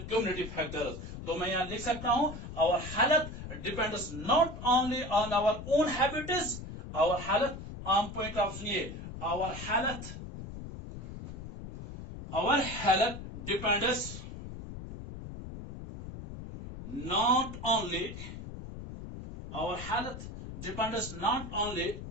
community factors. तो मैं यहां लिख सकता हूं, our health depends not only on our own habits, our health, आम पॉइंट ऑफ सुनिए, our health depends not only, our health depends not only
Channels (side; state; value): left; noise; rumble, 10 dB below the sound